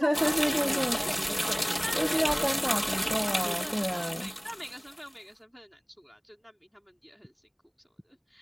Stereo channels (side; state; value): both; identical; correlation 1.00